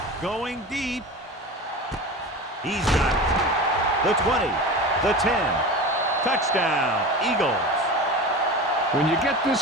going deep. He's got it. The 20, the 10. Touchdown, Eagles. When you get this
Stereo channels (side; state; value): both; normal; correlation 0.30